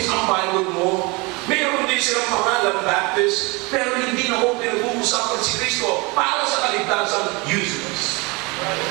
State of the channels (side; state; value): left; quieter; 26.9 dB